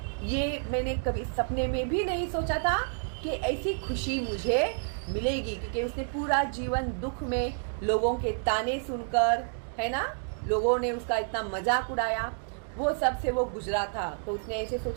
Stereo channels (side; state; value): left; silent; 58 dB below the other